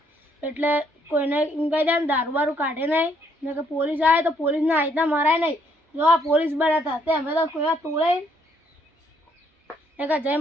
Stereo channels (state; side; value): normal; both; correlation 0.69